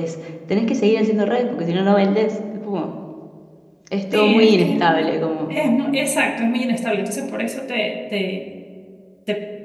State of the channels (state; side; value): identical; both; correlation 1.00